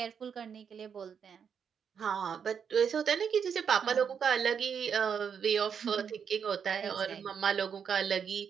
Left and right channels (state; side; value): quieter; left; 7.2 dB